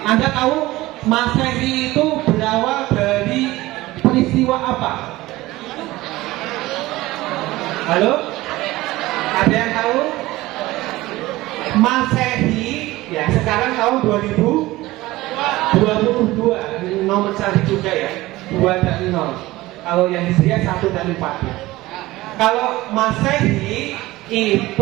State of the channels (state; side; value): quieter; left; 18.4 dB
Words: Anda tahu Masehi itu berawal dari peristiwa apa? Halo? Ada yang tahu? Masehi ya sekarang tahun 2022, nomor cari juga ya, 2 dan 0. Kalau yang Hijriah 1 dan 4 ya. Kalau Masehi